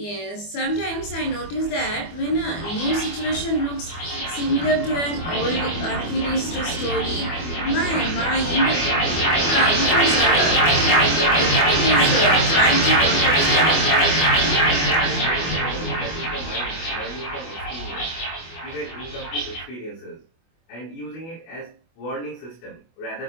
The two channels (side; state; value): right; late; 24 ms